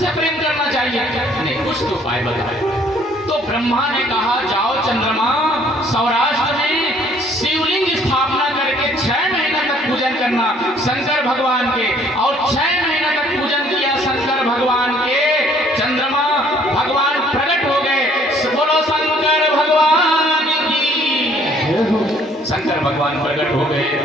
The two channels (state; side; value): normal; both; correlation 0.60